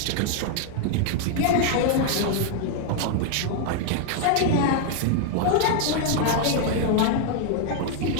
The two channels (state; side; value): different; both; correlation 0.00